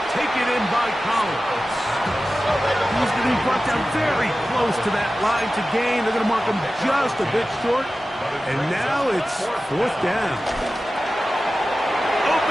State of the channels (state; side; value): normal; both; correlation 0.95